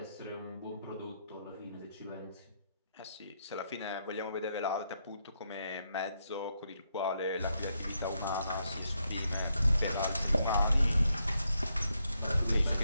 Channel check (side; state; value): both; inverted; correlation -0.79